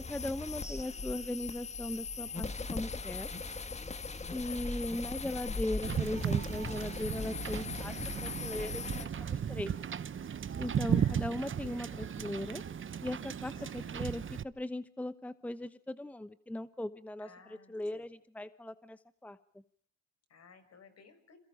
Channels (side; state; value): both; normal; correlation 0.67